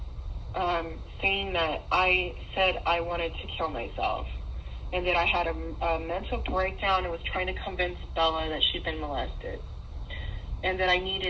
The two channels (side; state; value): both; identical; correlation 1.00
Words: saying that I said I wanted to kill myself, and that I had a mental breakdown and was trying to convince Bella that she'd been molested, and that I